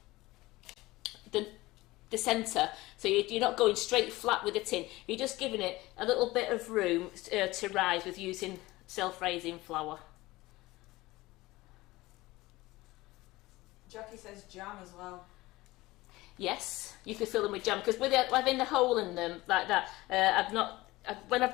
centre. So you're not going straight flat with the tin. You're just giving it a little bit of room to rise with using self-raising flour. Jackie says jam as well. Yes, you could fill them with jam, because with having the hole in them like that, when I've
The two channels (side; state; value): right; quieter; 19.5 dB